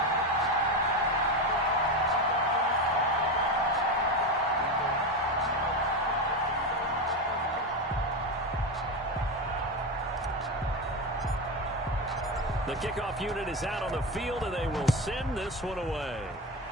The kickoff unit is out on the field, and they will send this one away.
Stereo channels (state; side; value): normal; both; correlation 0.17